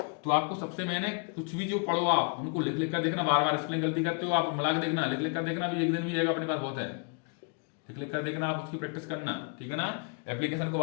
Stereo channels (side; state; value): right; quieter; 38.6 dB